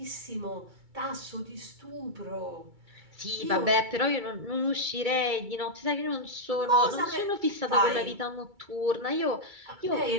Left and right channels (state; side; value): late; left; 2.3 ms